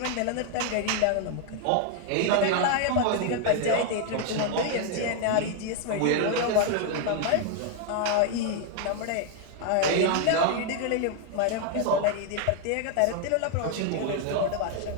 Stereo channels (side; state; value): both; different; correlation 0.00